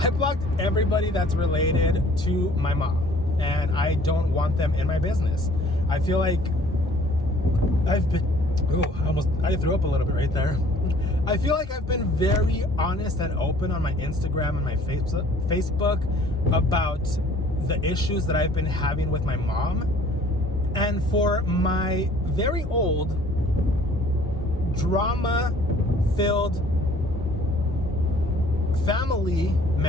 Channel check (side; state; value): both; normal; correlation 0.54